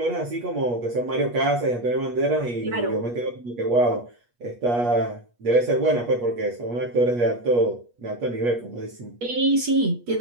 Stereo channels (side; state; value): left; late; 8.4 ms